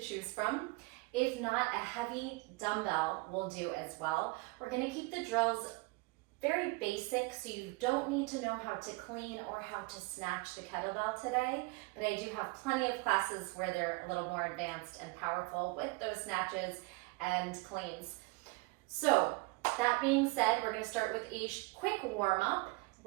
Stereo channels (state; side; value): quieter; left; 25.5 dB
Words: choose from. If not, a heavy dumbbell will do as well. We're gonna keep the drills very basic, so you don't need to know how to clean or how to snatch the kettlebell today, but I do have plenty of classes where they're a little more advanced and powerful with those snatches and cleans. So, that being said, we're going to start with a quick warm-up.